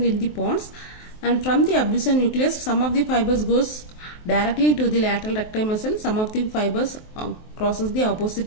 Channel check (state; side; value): late; right; 23 ms